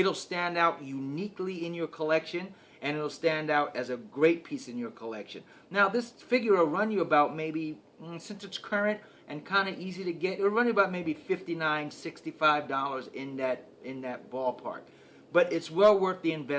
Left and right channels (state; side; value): identical; both; correlation 1.00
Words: stand out uniquely in your collection, and it'll stand out as a great piece in your collection. Now this figure will run you about maybe, since it's current and kind of easy to get, it'll run you about maybe $59, $65 in that ballpark. But it's well worth the